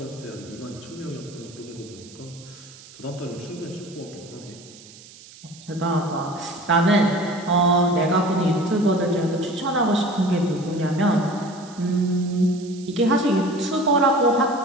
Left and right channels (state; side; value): noise; right; hiss, 20 dB below the sound